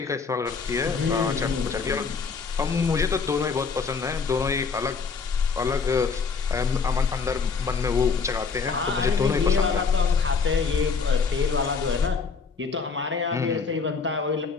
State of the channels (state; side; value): quieter; right; 5.2 dB